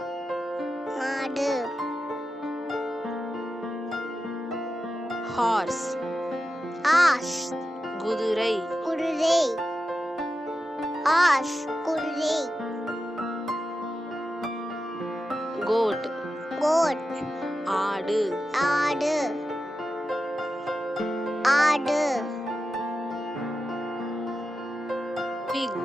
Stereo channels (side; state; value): both; normal; correlation 0.91